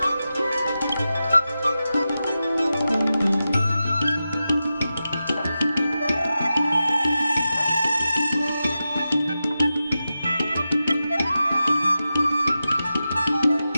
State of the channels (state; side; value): inverted; both; correlation -0.92